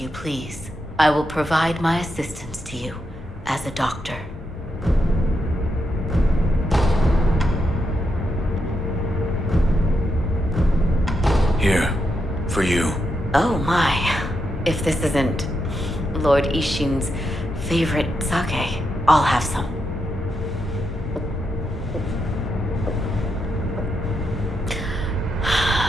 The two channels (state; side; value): normal; both; correlation 0.83